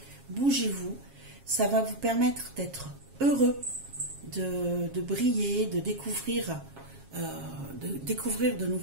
bougez-vous, ça va vous permettre d'être heureux, de briller, de découvrir de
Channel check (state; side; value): late; left; 7.3 ms